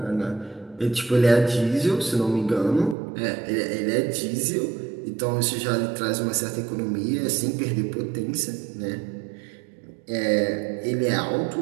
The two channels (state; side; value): drops out; left; at 3.0 s